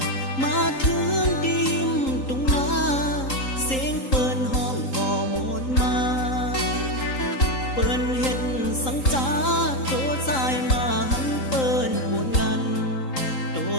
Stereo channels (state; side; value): late; right; 3.8 ms